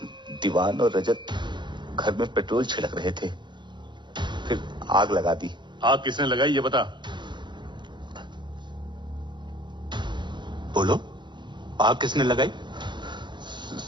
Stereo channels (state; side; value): late; left; 0.22 ms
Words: दीवान और रजत घर में पेट्रोल छिड़क रहे थे, फिर आग लगा दी। आग किसने लगाई ये बता। बोलो, आग किसने लगाई?